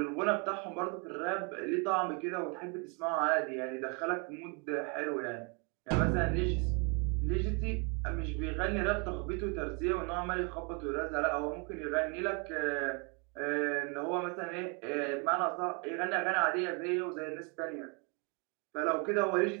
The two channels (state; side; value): quieter; left; 34.0 dB